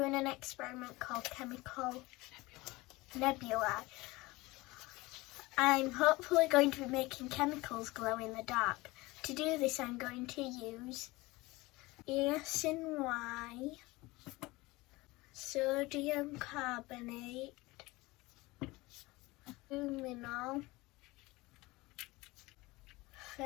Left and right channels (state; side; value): quieter; right; 21.4 dB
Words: an experiment called chemical nebulae. I'm hopefully going to be making chemicals glow in the dark. To do this I'm going to use ESNY, sodium carbonate, luminol,